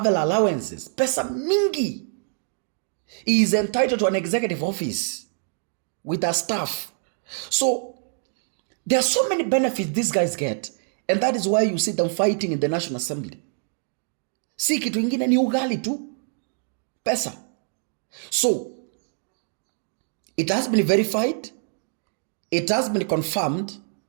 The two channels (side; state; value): left; silent; 59 dB below the other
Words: allowances. Pesa mingi. He is entitled to an executive office with a staff. So there are so many benefits these guys get, and that is why you see them fighting in the National Assembly. Si kitu ingine ni ugali tu. Pesa. So it has been verified. It has been confirmed.